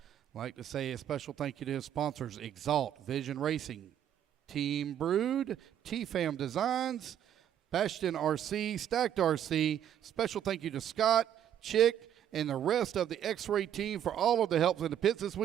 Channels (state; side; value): quieter; left; 10.1 dB